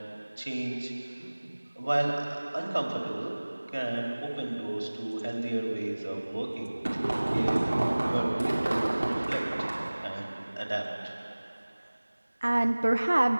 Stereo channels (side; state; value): both; inverted; correlation -1.00